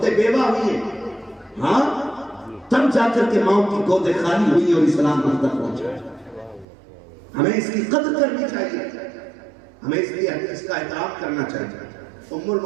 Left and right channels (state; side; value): drops out; left; at 6.7 s